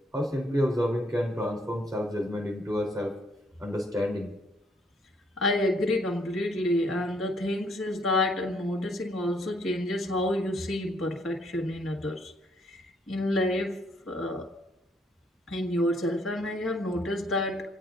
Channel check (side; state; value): both; normal; correlation 0.68